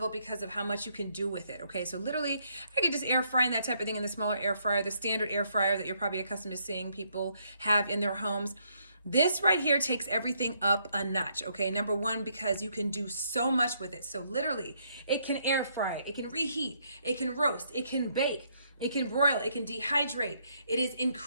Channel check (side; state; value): both; inverted; correlation -0.72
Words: because of how much you can do with it, okay? So literally, I could just air fry and that type of thing in the smaller air fryer, the standard air fryer that you're probably accustomed to seeing people have in their homes. This right here takes everything up a notch, okay? Number one, because you can do so much with it. So literally, it can air fry, it can reheat, it can roast, it can bake, it can broil, it can dehydrate. It is